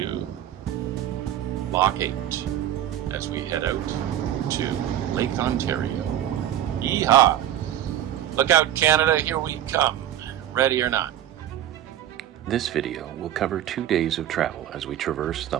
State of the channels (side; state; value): left; quieter; 11.6 dB